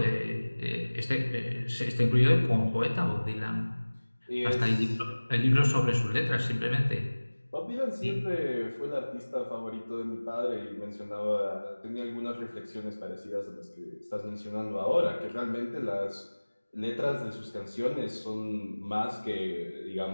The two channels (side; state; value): both; inverted; correlation -1.00